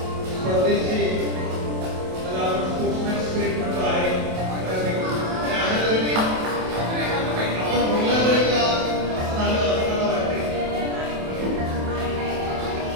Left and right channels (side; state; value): left; late; 27 ms